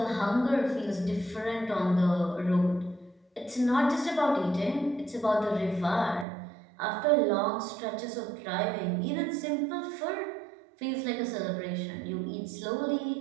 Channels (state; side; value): drops out; left; at 6.2 s